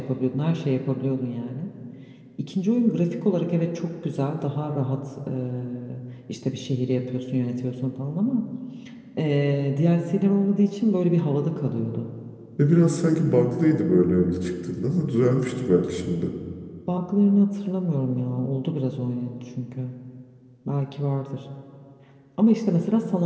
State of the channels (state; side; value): identical; both; correlation 1.00